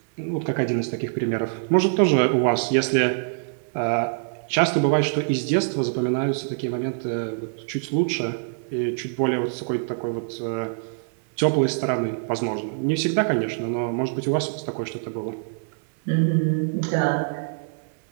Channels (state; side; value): silent; left; 62 dB below the other